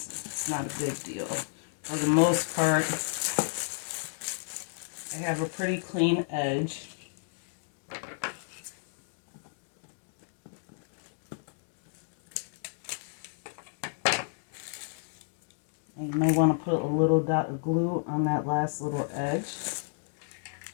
It's not a big deal. For the most part, I have a pretty clean edge. And you may want to put a little dot of glue on that last little edge.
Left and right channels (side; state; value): right; silent; digital silence